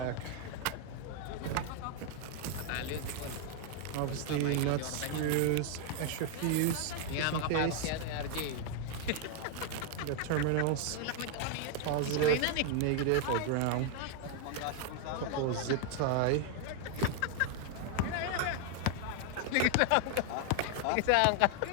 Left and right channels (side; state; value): both; different; correlation 0.00